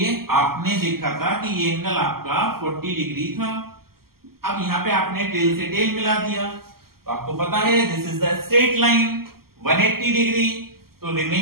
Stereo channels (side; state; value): left; late; 0.94 ms